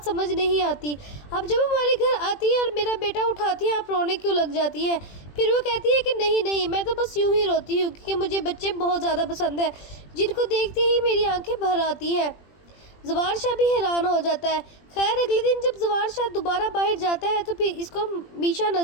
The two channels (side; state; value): right; late; 20 ms